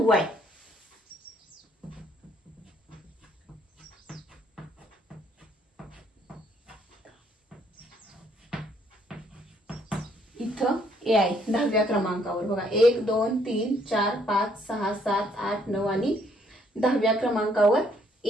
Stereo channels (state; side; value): normal; both; correlation 0.67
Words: आहे. इथं ए आहे 10व्या क्रमांकावर. बघा 1 2 3 4 5 6 7 8 9 आणि 10व्या क्रमांकावर